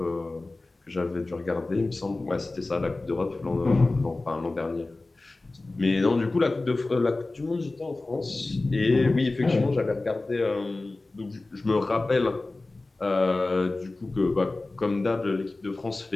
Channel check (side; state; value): right; quieter; 3.1 dB